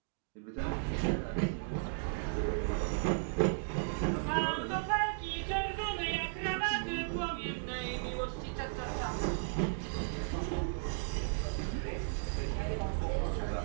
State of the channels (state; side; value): silent; left; digital silence